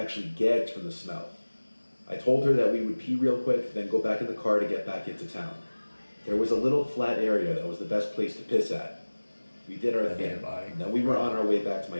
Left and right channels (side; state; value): both; inverted; correlation -1.00